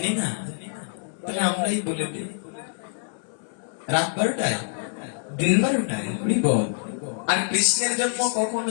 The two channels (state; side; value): silent; right; digital silence